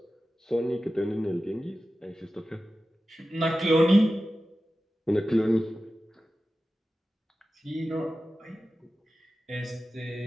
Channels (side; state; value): both; normal; correlation 0.94